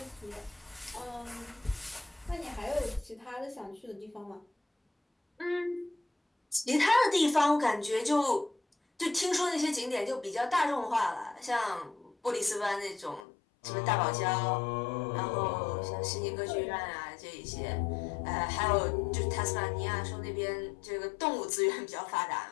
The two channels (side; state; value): right; drops out; at 13.2 s